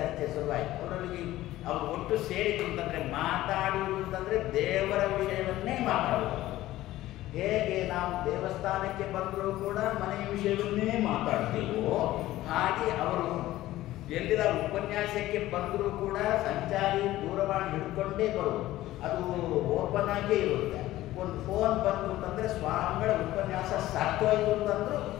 ಶುರುವಾಯಿತು. ಅವರೊಳಗೆ ಅವರು ಒಟ್ಟು ಸೇರಿತು ಅಂತಂದರೆ ಮಾತಾಡುವುದು ಅಂತಂದರೆ ದೇವರ ವಿಷಯವನ್ನೇ ಮಾತಾಡುವುದು. ಹೇಗೆ ನಾವು ದೇವಸ್ಥಾನಕ್ಕೆ ಬಂದರೂ ಕೂಡ ಮನೆಯ ವಿಷಯವನ್ನೇ ಮಾತಾಡ್ತೇವೋ ಹಾಗೆ ಅವರು ಎಲ್ಲಿರ ಉಪನ್ಯಾಸಕ್ಕೆ ಬಂದರೂ ಕೂಡ ಸಂಚಾರಿ ದೂರವಾಣಿ ಹಿಡ್ಕೊಂಡೇ ಬರುವುದು. ಅದು ಓಪನ್ ಆಗೇ ಇರುತ್ತೆ. ಒಂದು ಫೋನ್ ಬಂತು ಅಂತಂದರೆ ಸ್ವಾಮಿಗಳ ಉಪನ್ಯಾಸ ಸಾಕೋಯ್ತು ಅಂತಂದ್ರು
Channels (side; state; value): right; quieter; 15.6 dB